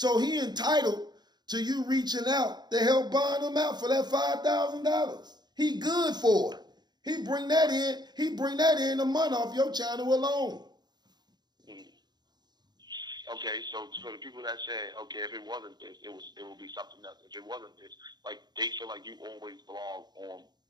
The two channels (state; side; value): late; left; 0.20 ms